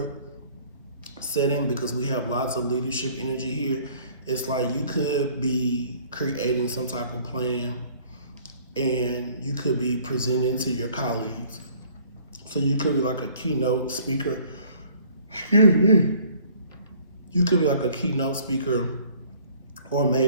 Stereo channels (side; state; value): both; inverted; correlation -0.56